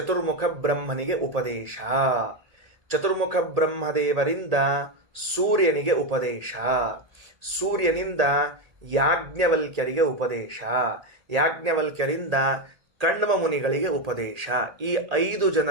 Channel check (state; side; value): late; left; 1.8 ms